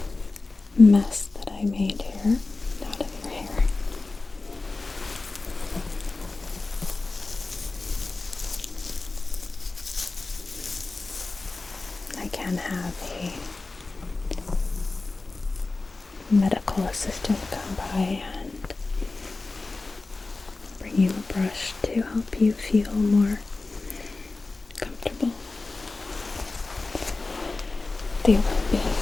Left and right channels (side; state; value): right; quieter; 3.5 dB